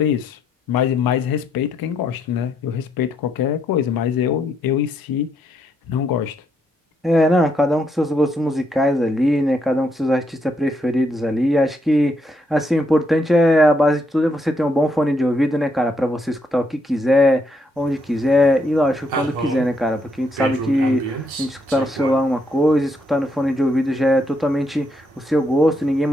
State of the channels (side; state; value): both; normal; correlation 0.75